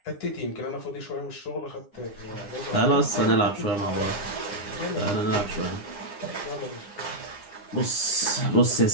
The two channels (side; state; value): right; late; 9.8 ms